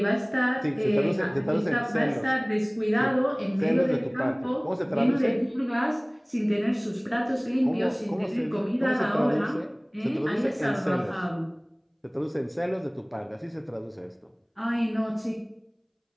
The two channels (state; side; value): identical; both; correlation 1.00